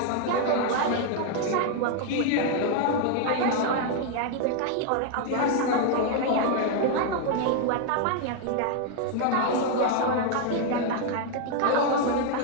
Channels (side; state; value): both; different; correlation 0.00